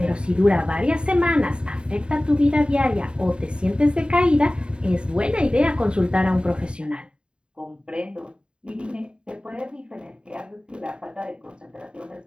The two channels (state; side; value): late; left; 0.052 ms